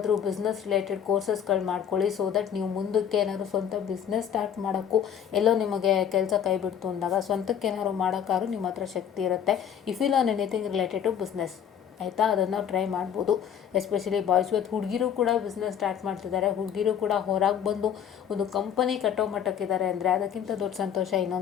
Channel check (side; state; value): right; quieter; 8.7 dB